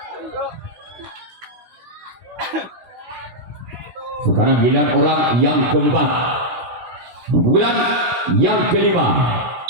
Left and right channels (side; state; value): left; late; 16 ms